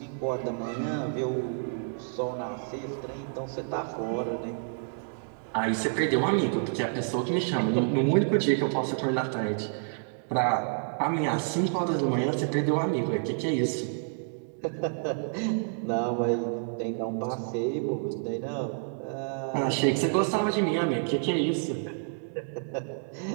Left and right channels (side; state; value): left; silent; digital silence